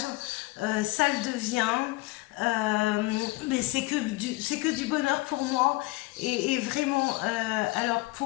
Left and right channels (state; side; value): quieter; right; 21.7 dB